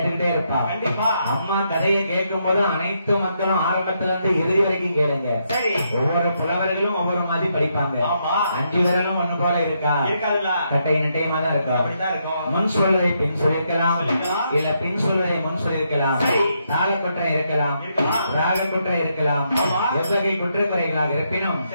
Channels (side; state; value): both; inverted; correlation -0.78